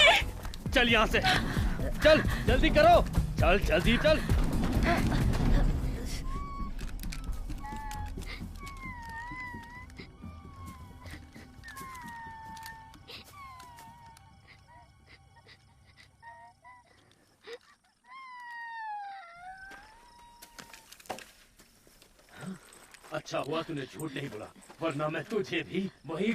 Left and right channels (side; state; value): both; identical; correlation 1.00